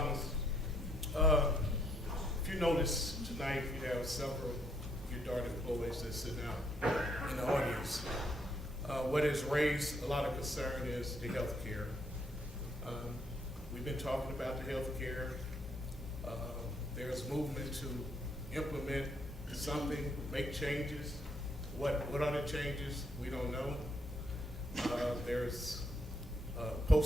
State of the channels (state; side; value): normal; both; correlation 0.71